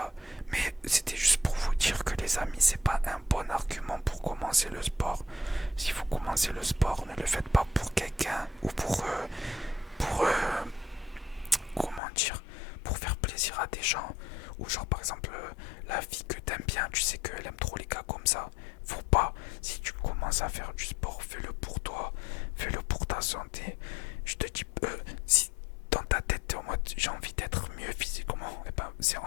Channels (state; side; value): drops out; right; at 12.0 s